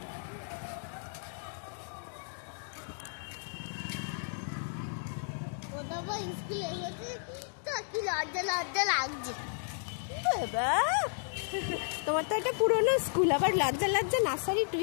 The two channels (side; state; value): right; silent; digital silence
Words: তোমার তো একটা পুরোনো স্কুল, আবার লজ্জা লজ্জা নার্সারি